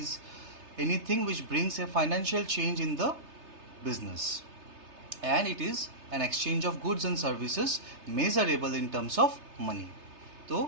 anything which brings a financial change in the business and it is an exchange of goods and services measurable in terms of money.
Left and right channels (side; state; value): left; late; 3.3 ms